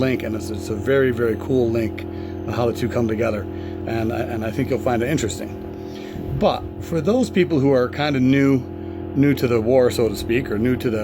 and it's a very, very cool link on how the two come together, and I think you'll find it interesting. But for those people who are kind of new to the war, so to speak, or new to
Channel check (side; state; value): both; identical; correlation 1.00